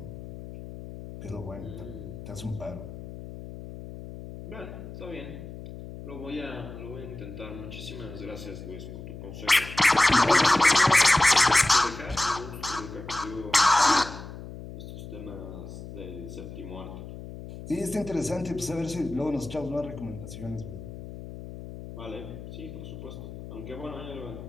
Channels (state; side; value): noise; left; hum, 12 dB below the sound